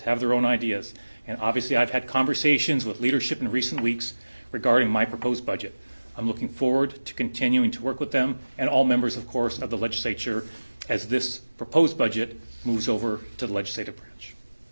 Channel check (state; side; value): inverted; both; correlation -1.00